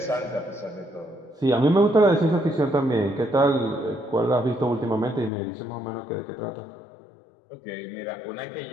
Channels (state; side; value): drops out; right; at 5.3 s